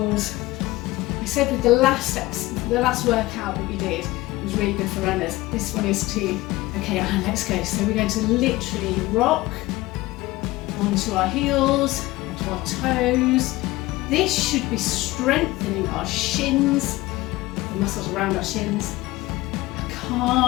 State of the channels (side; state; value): right; quieter; 19.0 dB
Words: I said with the last workout that we did, it was really good for runners. This one is too. Okay, let's go. So we're going to literally rock onto our heels, onto our toes. This should be strengthening our shins, the muscles around our shins, our